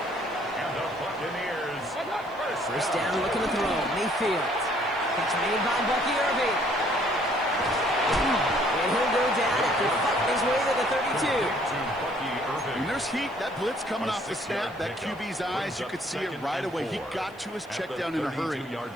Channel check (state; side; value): noise; left; hiss, 30 dB below the sound